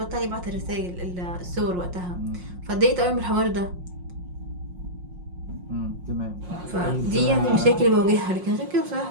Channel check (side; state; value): left; late; 5.6 ms